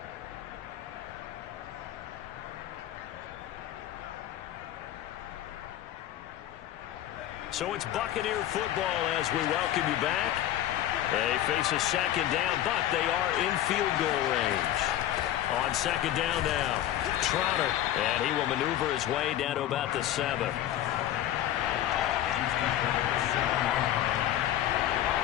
So it's Buccaneer football as we welcome you back. They face a 2nd down, but they are in field goal range. On 2nd down now, Trotter, and he will maneuver his way down to about the 7.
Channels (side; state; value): right; quieter; 12.5 dB